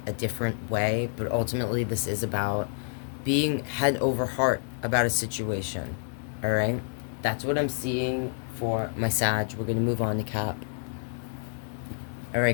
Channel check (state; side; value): silent; right; digital silence